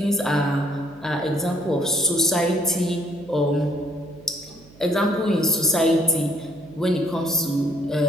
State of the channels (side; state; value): right; noise; hum, 25 dB below the sound